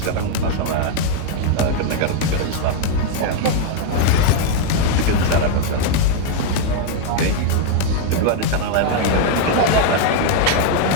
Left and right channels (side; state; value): both; different; correlation 0.00